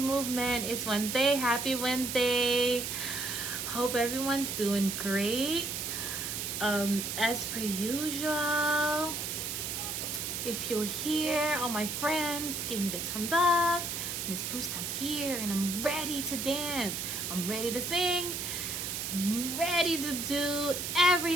Movement. It's Wednesday. Happy Wednesday. Hope everyone's doing great. As per usual, if you're here, all my friends, give me the thumbs up. Miss Bruce, I'm here and I'm ready to dance. I'm ready to sing. I'm ready to do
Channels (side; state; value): right; noise; hiss, 3 dB below the sound